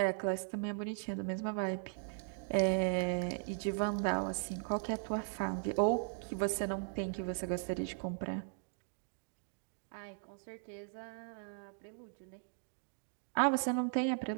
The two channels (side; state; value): left; silent; digital silence